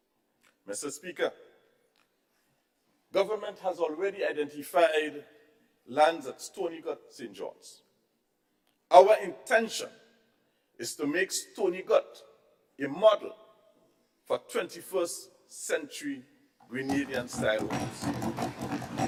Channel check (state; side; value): identical; both; correlation 1.00